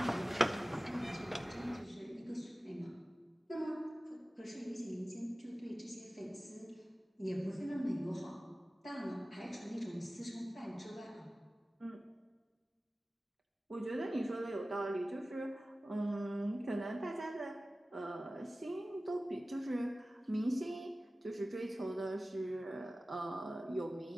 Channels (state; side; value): normal; both; correlation 0.97